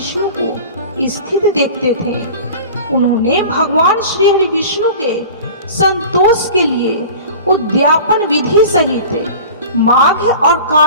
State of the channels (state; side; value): inverted; both; correlation -0.38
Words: को स्थित देखते थे। उन्होंने भगवान श्री हरि विष्णु के संतोष के लिए उद्यापन विधि सहित माघ और